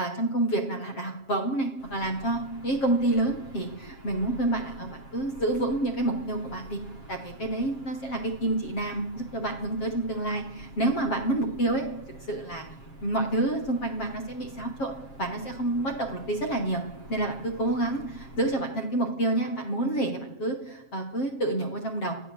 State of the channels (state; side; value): late; right; 7.4 ms